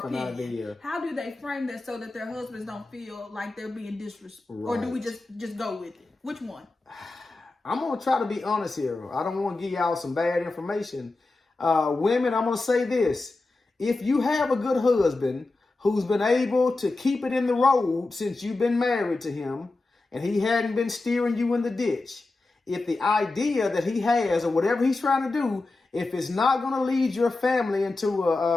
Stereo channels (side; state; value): right; quieter; 3.3 dB